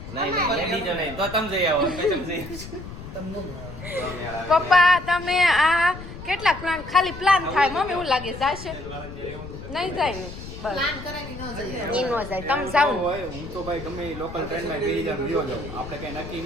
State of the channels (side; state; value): left; noise; rumble, 12 dB below the sound